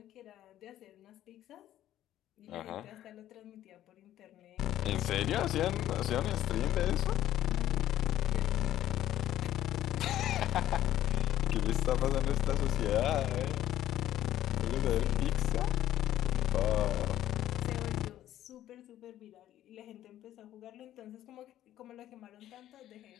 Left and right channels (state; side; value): quieter; right; 12.6 dB